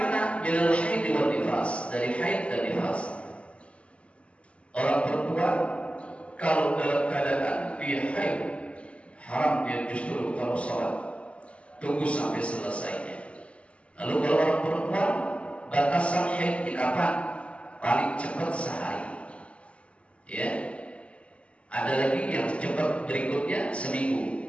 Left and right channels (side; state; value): right; late; 0.060 ms